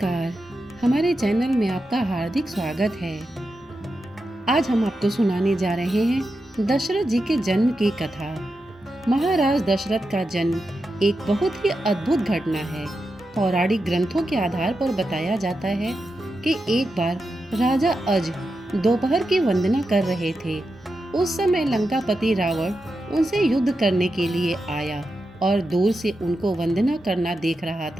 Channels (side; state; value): both; normal; correlation 0.89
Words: हमारे चैनल में आपका हार्दिक स्वागत है। आज हम आपको सुनाने जा रहे हैं दशरथ जी के जन्म की कथा। महाराज दशरथ का जन्म एक बहुत ही अद्भुत घटना है। पौराणिक ग्रंथों के आधार पर बताया जाता है कि एक बार राजा अज दोपहर की वंदना कर रहे थे। उस समय लंकापति रावण उनसे युद्ध करने के लिए आया और दूर से उनको वंदना करना देख रहा